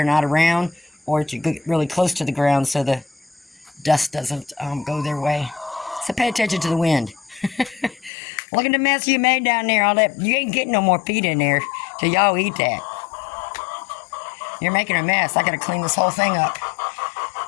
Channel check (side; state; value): right; drops out; at 8.1 s